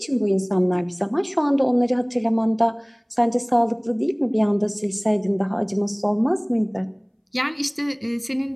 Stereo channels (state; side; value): identical; both; correlation 1.00